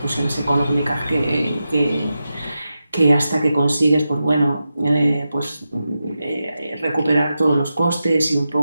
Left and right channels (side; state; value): both; inverted; correlation -0.90